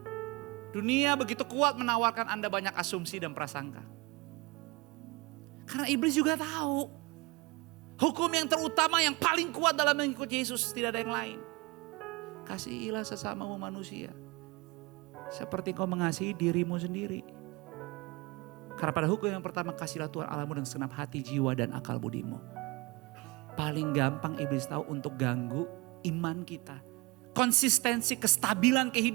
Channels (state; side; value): quieter; left; 24.2 dB